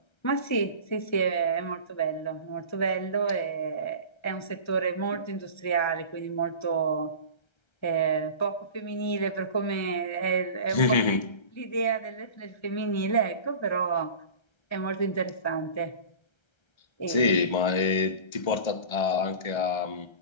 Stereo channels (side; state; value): right; late; 1.3 ms